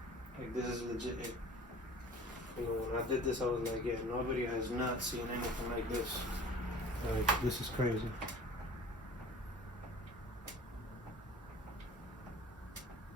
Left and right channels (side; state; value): both; normal; correlation 0.45